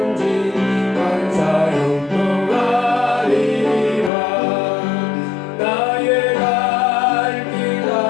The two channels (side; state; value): right; drops out; at 4.1 s